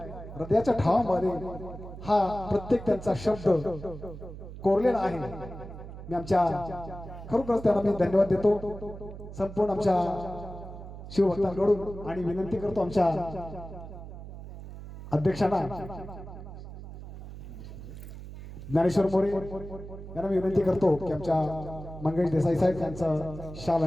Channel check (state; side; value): noise; right; hum, 12 dB below the sound